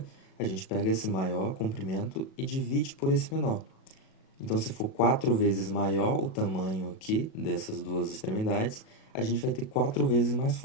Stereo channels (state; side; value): late; right; 37 ms